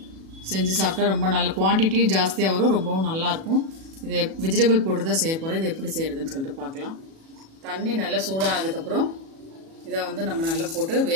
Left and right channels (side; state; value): left; late; 37 ms